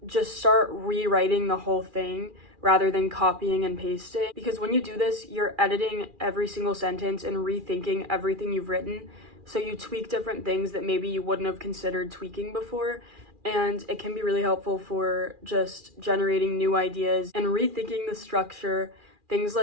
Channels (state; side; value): late; left; 2.4 ms